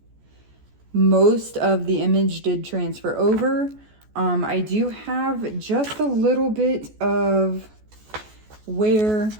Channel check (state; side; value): late; left; 14 ms